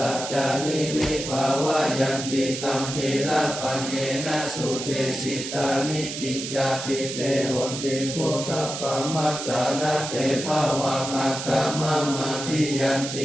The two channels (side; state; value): right; noise; hiss, 7 dB below the sound